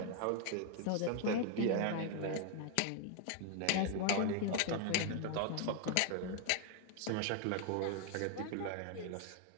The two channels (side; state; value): both; different; correlation 0.00